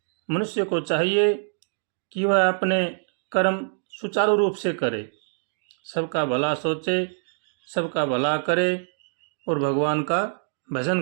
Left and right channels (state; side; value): silent; left; digital silence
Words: मनुष्य को चाहिए कि वह अपने कर्म सुचारू रूप से करे, सबका भला सोचे, सबका भला करे और भगवान का